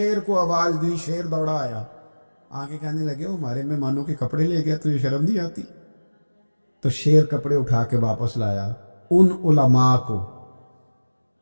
کو آواز دی، شیر دوڑا آیا. آگے کہنے لگے وہ ہمارے مہمانوں کے کپڑے لے گیا، تجھے شرم نہیں آتی؟ تو شیر کپڑے اٹھا کے واپس لایا. ان علماء کو،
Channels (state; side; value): inverted; both; correlation -1.00